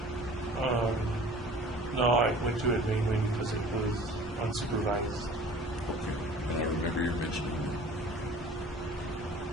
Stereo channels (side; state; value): both; normal; correlation 0.46